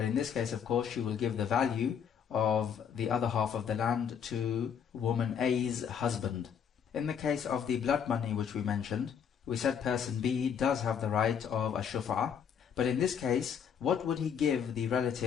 in this case, of course, she will give the value of the other half of the land to woman A's husband. In the case of the blood money which we mentioned, we said person B does have the right of a shuf'ah, but in this case, what would he give the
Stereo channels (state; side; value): quieter; right; 7.6 dB